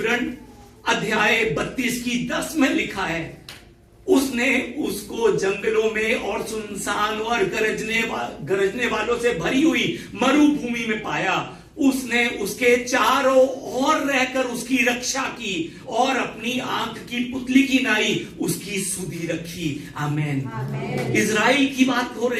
अध्याय 32 की 10 में लिखा है, उसने उसको जंगलों में और सुनसान और गरजने वालों से भरी हुई मरुभूमि में पाया। उसने उसके चारों ओर रहकर उसकी रक्षा की और अपनी आंख की पुतली की नाई उसकी सुधि रखी। आमेन। इजराइल की बात हो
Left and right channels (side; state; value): both; identical; correlation 1.00